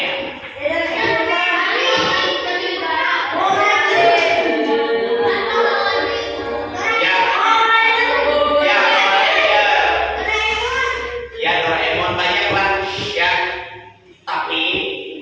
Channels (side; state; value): both; identical; correlation 1.00